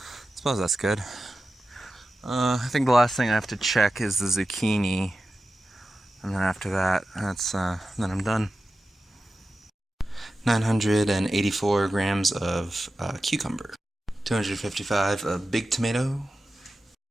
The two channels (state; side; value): normal; both; correlation 0.93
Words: suppose that's good. I think the last thing I have to check is the zucchini, and then after that, then I'm done. 984 grams of cucumber, 255 of big tomato,